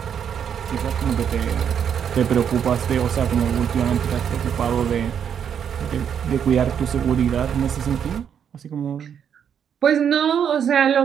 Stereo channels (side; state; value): left; quieter; 8.2 dB